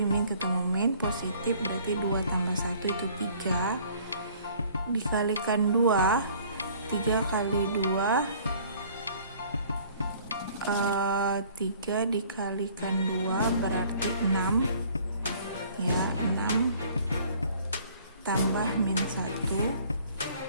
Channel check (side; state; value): both; inverted; correlation -0.55